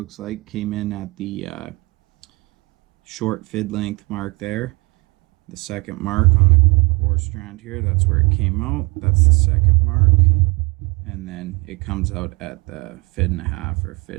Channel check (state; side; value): quieter; left; 26.3 dB